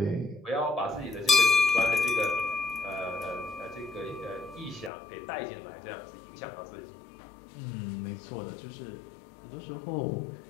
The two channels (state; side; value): drops out; right; at 4.9 s